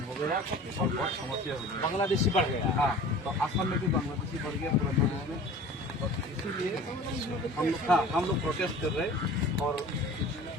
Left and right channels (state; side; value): normal; both; correlation 0.42